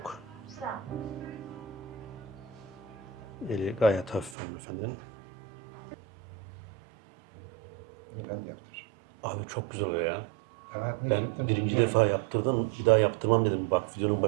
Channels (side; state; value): left; drops out; at 4.4 s